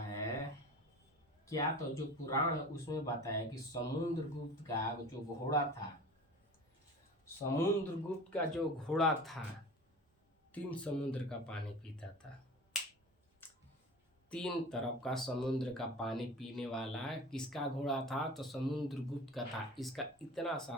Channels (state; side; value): normal; both; correlation 0.38